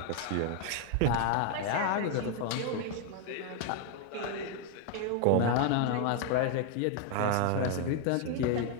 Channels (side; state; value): both; different; correlation 0.01